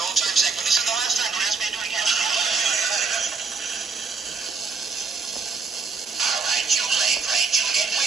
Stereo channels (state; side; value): quieter; left; 4.7 dB